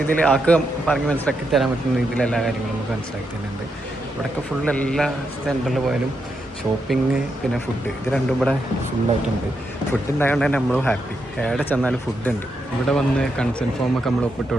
ആൾക്ക് പറഞ്ഞ് മനസ്സിലാക്കി തരാൻ പറ്റുന്ന രീതിയിൽ എല്ലാ കാര്യങ്ങളും നമുക്ക് മനസ്സിലാക്കി തരുന്നുണ്ട്. ഇവിടെയൊക്കെ ഫുള്ള് എല്ലാ സെൻറ്ററിൽ പോയാലും ഷോപ്പിംഗ് പിന്നെ ഫുഡ്, ഇത് രണ്ടും ഇവിടെ ഫുള്ളായിട്ടുണ്ട്. ഫുഡ് ഉണ്ടായതുകൊണ്ട് തന്നെ നമ്മളും ഹാപ്പി. എവിടെ ചെന്നാലും ഫുഡ് ഉണ്ട്. ഇവിടെ വന്ന് കൺസെൻറ്റ് ഫോമൊക്കെ നമ്മൾ ഒപ്പിട്ട്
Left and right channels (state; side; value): normal; both; correlation 0.83